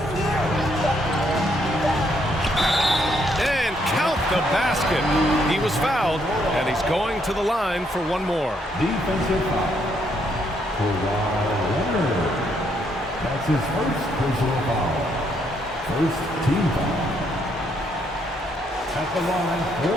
And count the basket. He was fouled, and he's going to the line for one more. Defensive foul. Leonard. That's his first personal foul. First team foul. At the line for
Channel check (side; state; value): both; normal; correlation 0.73